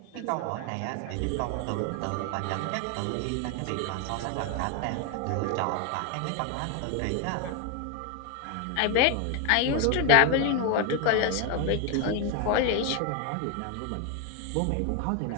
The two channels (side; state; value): both; different; correlation 0.01